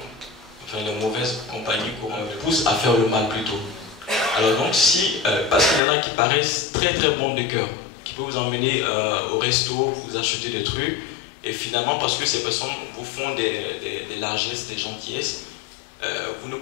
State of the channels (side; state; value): right; drops out; at 5.8 s